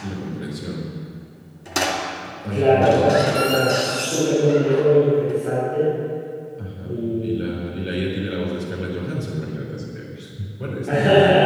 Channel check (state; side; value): identical; both; correlation 1.00